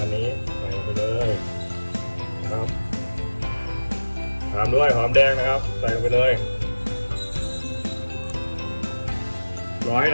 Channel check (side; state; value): both; inverted; correlation -1.00